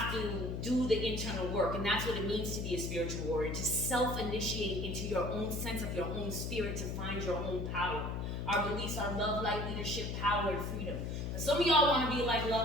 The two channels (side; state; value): left; noise; hum, 3 dB below the sound